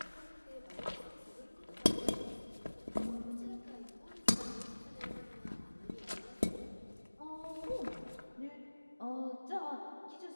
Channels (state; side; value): inverted; both; correlation -1.00